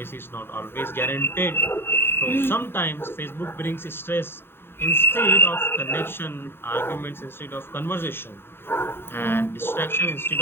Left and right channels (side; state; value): right; late; 0.11 ms